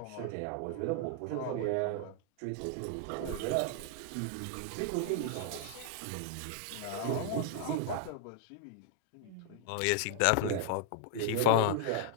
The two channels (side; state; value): both; different; correlation -0.01